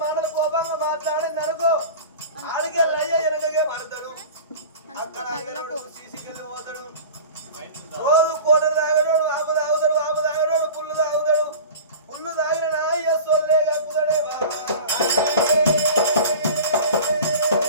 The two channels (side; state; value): both; inverted; correlation -0.37